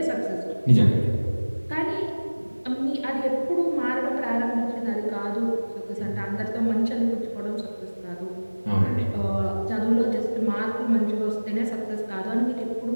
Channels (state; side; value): inverted; both; correlation -1.00